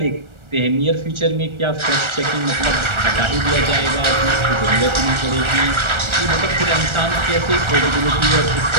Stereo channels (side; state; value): left; late; 1.4 ms